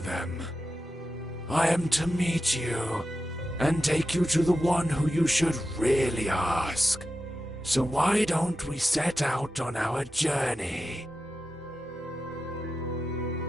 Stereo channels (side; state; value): both; normal; correlation 0.90